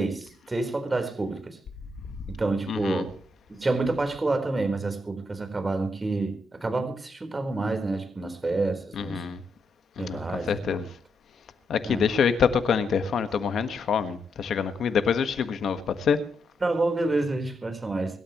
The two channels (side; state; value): both; normal; correlation 0.81